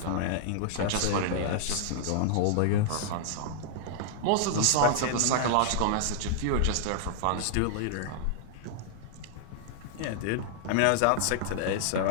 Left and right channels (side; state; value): both; different; correlation -0.01